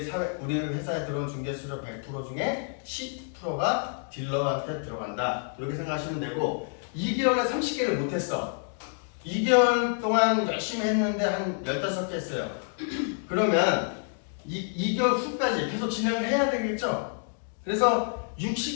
들어온 중개 수수료 100% 중에 10%가 딜러한테 들어간다. 이렇게 생각하시면 되고, 2개월에 30개를 못했어. 2개월 동안 열심히 했는데 한 15개 했어요. 그러면 2개월 후까지 계속 진행을 해야 되겠죠? 그래서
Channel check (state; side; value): silent; right; 59 dB below the other